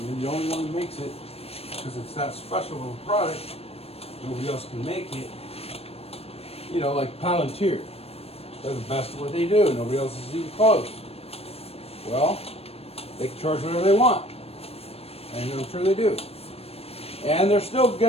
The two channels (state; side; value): late; right; 0.29 ms